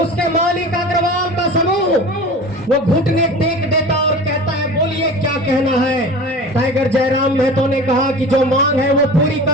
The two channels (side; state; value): both; normal; correlation 0.36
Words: मालिक अग्रवाल का समूह वो घुटने टेक देता और कहता है बोलिए क्या कहना है। टाइगर जयराम महतो ने कहा कि जो मांग है वो पूरी